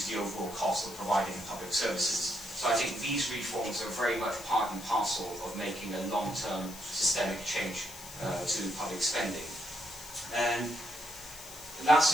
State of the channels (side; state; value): left; noise; hiss, 15 dB below the sound